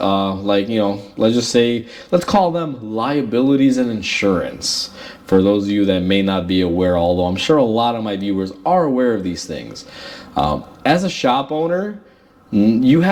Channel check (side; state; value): both; identical; correlation 1.00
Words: let's call them liabilities and insurance. For those of you that may not be aware, although I'm sure a lot of my viewers are aware of these things. As a shop owner, you